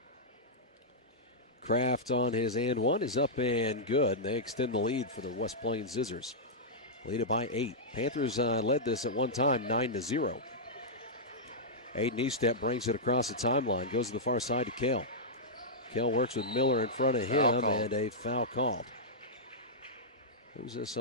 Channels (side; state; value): both; normal; correlation -0.10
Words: Kraft on his and one is up and good. They extend the lead for the West Plains Zizzers. Lead it by 8. Panthers led this at one time 9-0. Aiden Eastep brings it across the timeline, goes to the far side to Kale. Kale works with Miller in front of him, and a foul called. Who's this